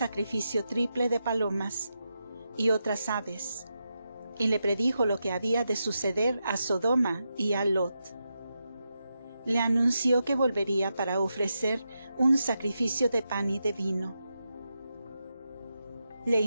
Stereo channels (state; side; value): inverted; both; correlation -0.86